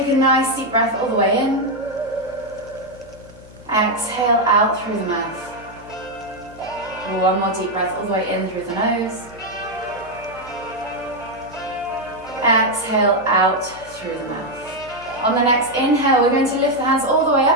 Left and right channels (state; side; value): noise; left; hum, 21 dB below the sound